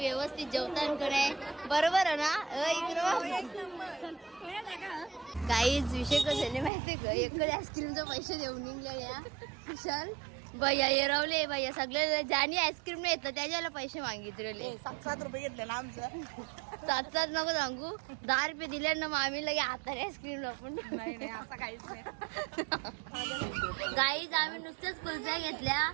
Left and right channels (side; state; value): left; drops out; at 6.7 s